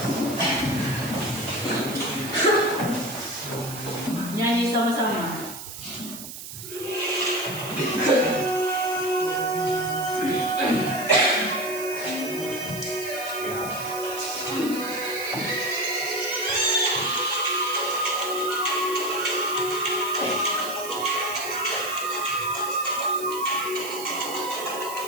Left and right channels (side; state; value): right; noise; hiss, 11 dB below the sound